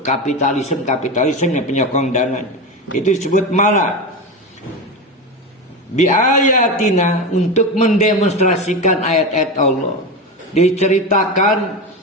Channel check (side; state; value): both; normal; correlation 0.20